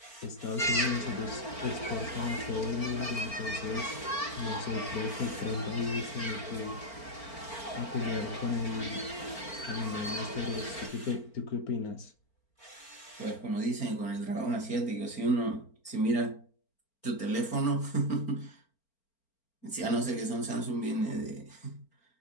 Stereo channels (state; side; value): late; right; 4.4 ms